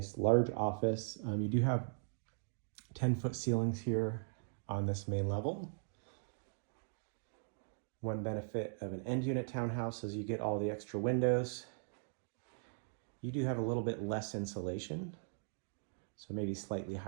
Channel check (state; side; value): silent; left; digital silence